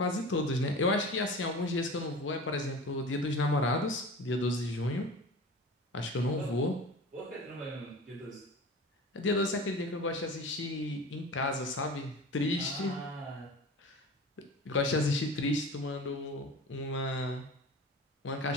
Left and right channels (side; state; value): both; normal; correlation 0.36